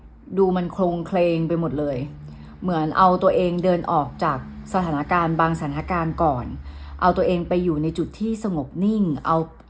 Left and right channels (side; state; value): both; identical; correlation 1.00